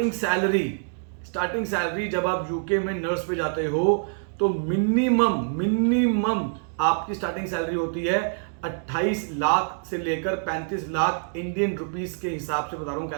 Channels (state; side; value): silent; left; digital silence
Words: सैलरी जब आप यूके में नर्स पे जाते हो तो मिनिमम आपकी स्टार्टिंग सैलरी होती है 28 लाख से लेकर 35 लाख इंडियन रुपीस के हिसाब से बता रहा हूं